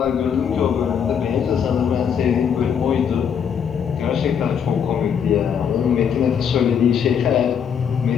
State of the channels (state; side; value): quieter; right; 7.7 dB